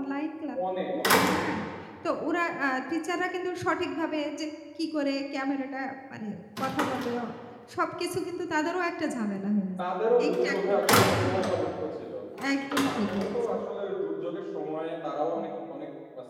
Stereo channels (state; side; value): identical; both; correlation 1.00